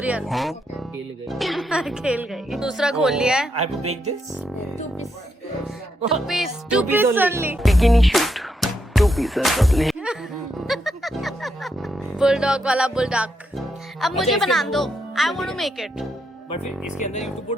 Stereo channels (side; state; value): both; normal; correlation 0.80